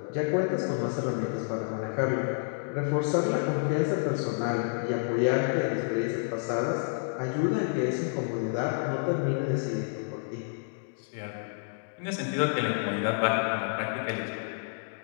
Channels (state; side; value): silent; right; digital silence